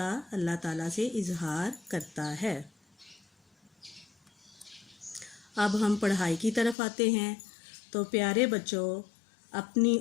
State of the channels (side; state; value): right; drops out; at 6.8 s